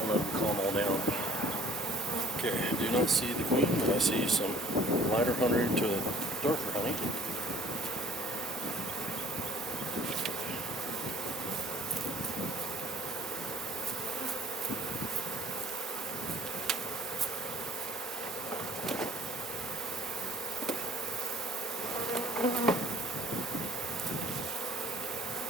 let them calm all down. Okay, I do not see the queen, but I see some lighter honey to darker honey.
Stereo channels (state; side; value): normal; both; correlation 0.53